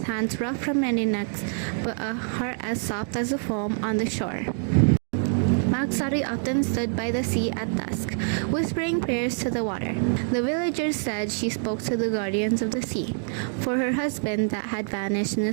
hands rough from many necks, but a heart as soft as the foam on the shore. Maksari often stood by the sea at dusk, whispering prayers to the water. The villagers said she spoke to the guardians of the sea, for her husband that had vanished in a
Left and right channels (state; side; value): silent; left; 61 dB below the other